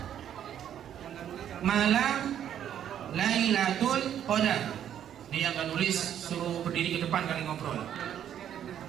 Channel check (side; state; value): left; quieter; 10.0 dB